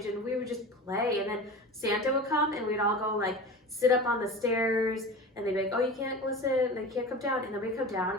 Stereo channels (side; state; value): both; normal; correlation 0.32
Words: and we would just play. And then Santa would come and we'd all go sit up on the stairs, and they'd be like, oh, you can't listen, and they can't come down. And then we'd come